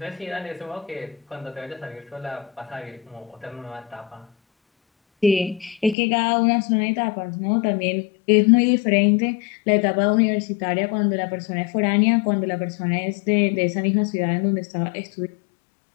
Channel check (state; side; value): drops out; right; at 6.0 s